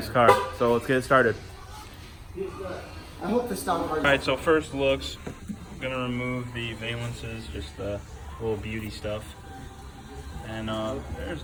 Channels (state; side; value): identical; both; correlation 1.00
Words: car. So let's get it started. I hope this stops. All right, so first looks, I'm gonna remove the valences, just the little beauty stuff. And there's